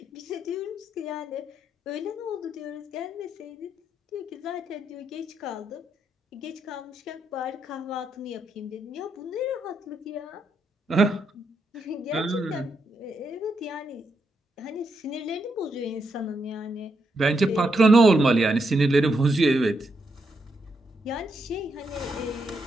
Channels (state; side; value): normal; both; correlation 0.80